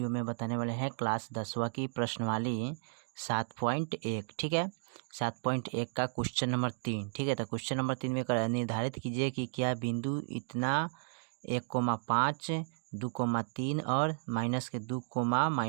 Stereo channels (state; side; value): silent; left; digital silence